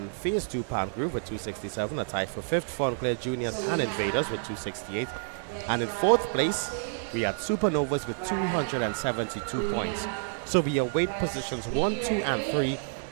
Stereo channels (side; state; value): left; silent; digital silence